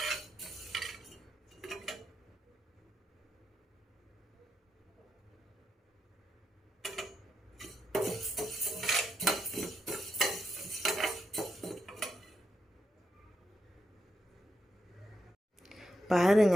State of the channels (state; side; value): normal; both; correlation 0.84